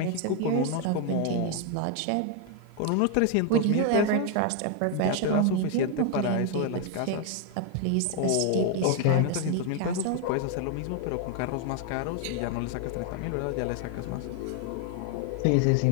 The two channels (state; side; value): different; both; correlation 0.01